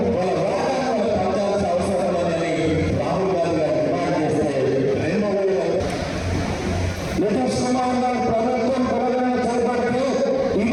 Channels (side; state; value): both; identical; correlation 1.00